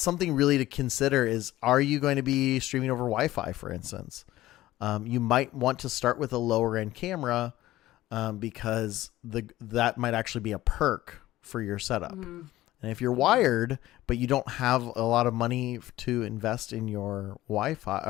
something really to consider is, are you going to be streaming over Wi-Fi, for instance? You might want to start with a lower end camera because that might actually be a perk for your setup. And if you're wired, but you don't have a lot of money to invest in your Wi-Fi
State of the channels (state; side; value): quieter; right; 15.9 dB